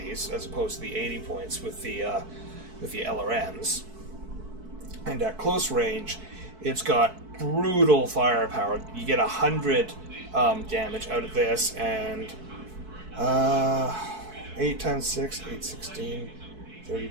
as opposed to the 80 points with the LRMs. And at close range, it's got brutal firepower. You get 100 damage out of this, and 8 times 6, 8, 16,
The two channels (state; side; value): late; left; 4.6 ms